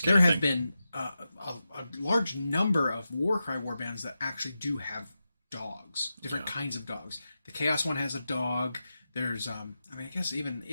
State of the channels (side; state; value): both; inverted; correlation -0.91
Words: There have been a large number of Warcry warbands that actually do have dogs, different kinds of dogs. The Chaos one has a dog. There's, I guess even